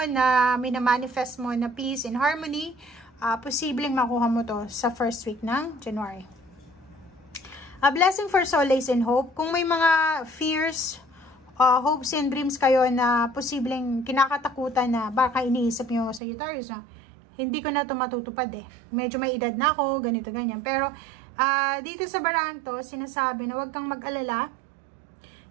na minamanifest mo na peace and harmony, posibleng makuha mo to sa first week ng January. A blessing for solace and hope. Kung may mga fears, hopes and dreams kayo na posibleng kinakatakutan na baka iniisip nyo sa Sagittarius na hindi ko na ito matutupad eh. Medyo may edad na ako, ganito, ganyan. Pero dito sa barang to, sinasabi na huwag kang mag-alala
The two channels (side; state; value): left; drops out; at 16.2 s